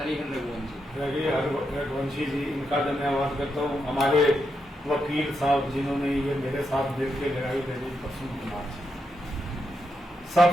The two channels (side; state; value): both; normal; correlation 0.83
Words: रघुवंशी जी, इनका धन्यवाद करता हूँ। हमारे वकील साहब जिन्होंने ये मेरे साथ मिल के लड़ाई लड़ी, प्रसून कुमार जी।